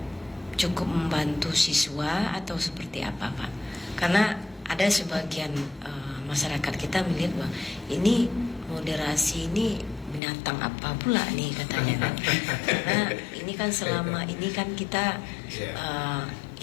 cukup membantu siswa atau seperti apa, Pak? Karena ada sebagian masyarakat kita melihat bahwa ini moderasi ini binatang apa pula nih katanya kan. Karena ini kan selama ini kan kita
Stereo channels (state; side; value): drops out; right; at 10.2 s